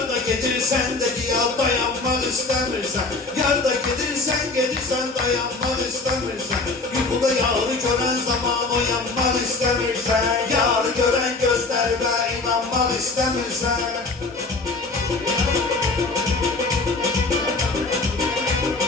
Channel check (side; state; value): right; quieter; 3.5 dB